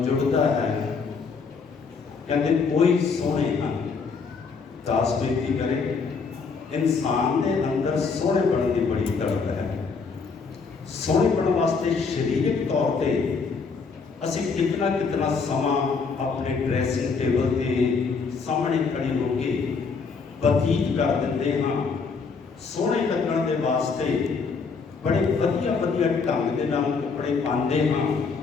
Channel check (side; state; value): right; quieter; 5.0 dB